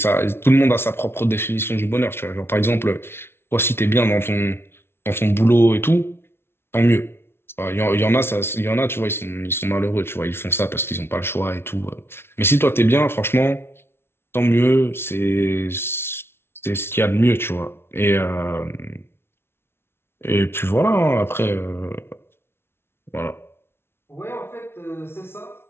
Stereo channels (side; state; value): right; late; 0.12 ms